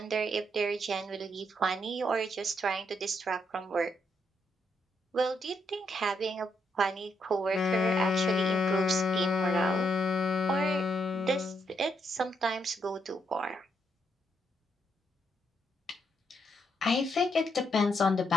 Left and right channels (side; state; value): both; normal; correlation 0.78